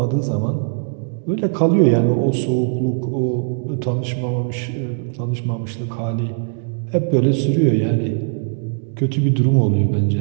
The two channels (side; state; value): left; silent; digital silence